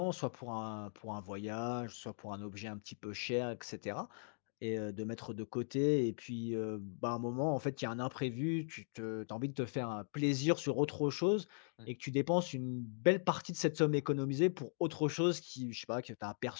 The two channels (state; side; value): silent; right; digital silence